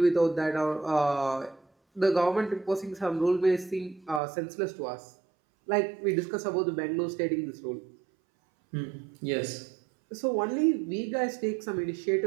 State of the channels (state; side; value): drops out; left; at 4.2 s